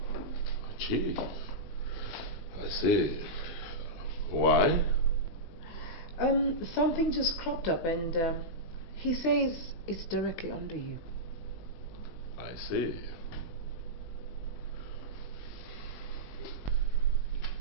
Chief? I see. Why? Something just cropped up and he says it's directly under you. I see.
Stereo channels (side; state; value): right; late; 20 ms